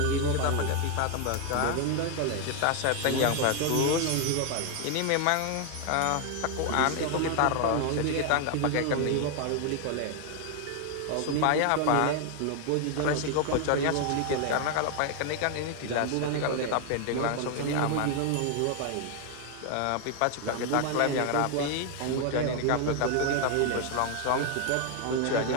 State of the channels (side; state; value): both; different; correlation 0.01